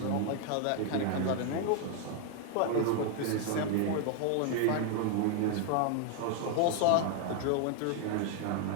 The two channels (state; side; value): different; both; correlation 0.00